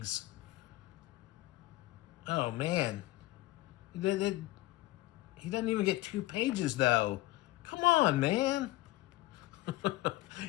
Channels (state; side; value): quieter; right; 18.5 dB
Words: Oh man, he doesn't even get 2 pages though. Come on, man.